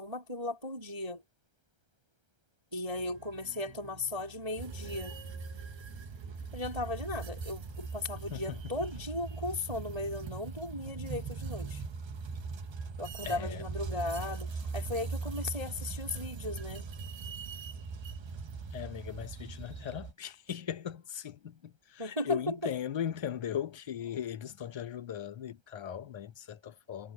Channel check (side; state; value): left; late; 1.3 ms